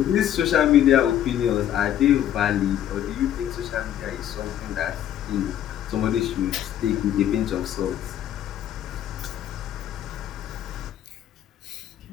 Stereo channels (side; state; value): right; quieter; 11.0 dB